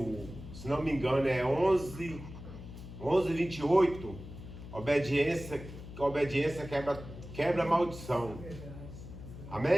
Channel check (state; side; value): noise; left; hum, 13 dB below the sound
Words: se não me engano, é 11:28, obediência quebra a maldição.